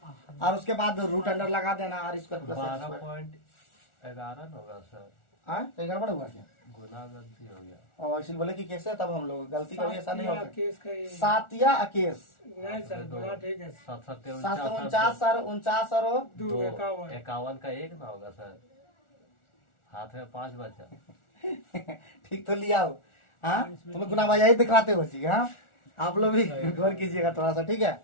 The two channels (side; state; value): right; late; 1.4 ms